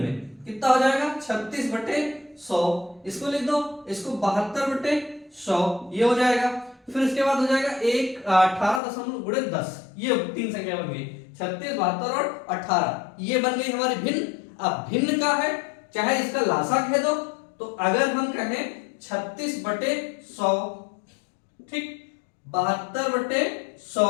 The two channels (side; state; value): right; drops out; at 8.8 s